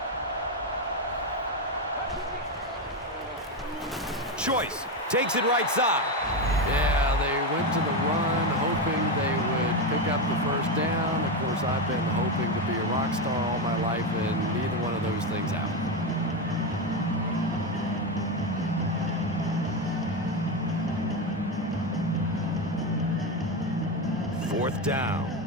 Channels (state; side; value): normal; both; correlation 0.12